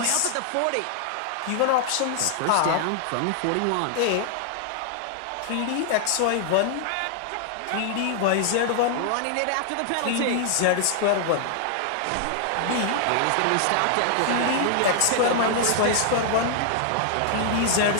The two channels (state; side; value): different; both; correlation -0.01